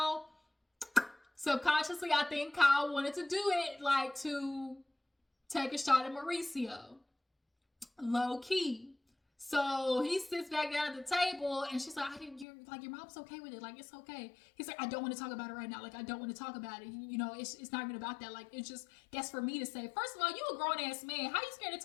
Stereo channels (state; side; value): drops out; right; at 12.5 s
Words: wanted to do it, like, to take a shot at Mauricio. Low key. So he sits back down at the table and she's like, your mom's okay with it. Like, it's okay. He's like, I don't want to talk about it right now. Like, I don't want to talk about it. It's not even about that. Like, it's just, that's for me to say. First of all, you a grown ass man. How you scared to